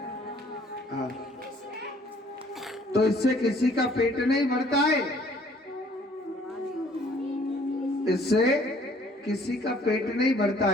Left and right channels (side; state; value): both; normal; correlation 0.59